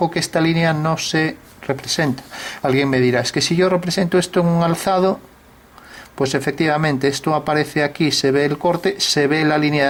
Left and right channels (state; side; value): identical; both; correlation 1.00